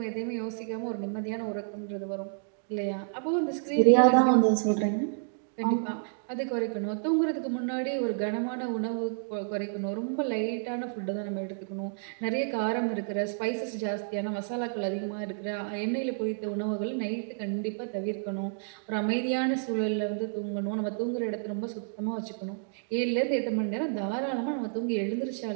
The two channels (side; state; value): left; silent; digital silence